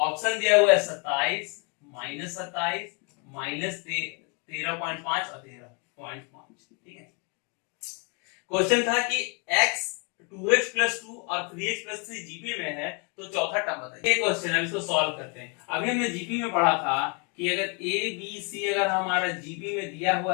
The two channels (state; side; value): quieter; right; 35.0 dB